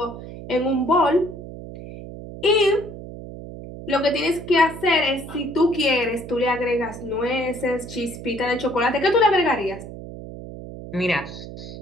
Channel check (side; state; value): right; noise; hum, 12 dB below the sound